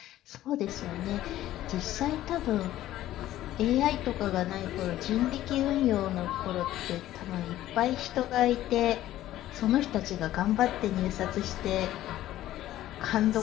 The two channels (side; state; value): right; quieter; 14.0 dB